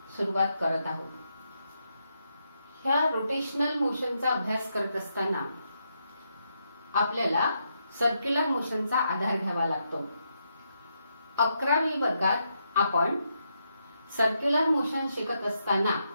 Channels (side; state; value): both; inverted; correlation -0.81